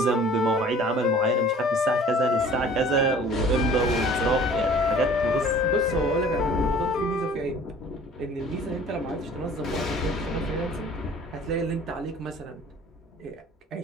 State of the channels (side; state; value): both; normal; correlation 0.49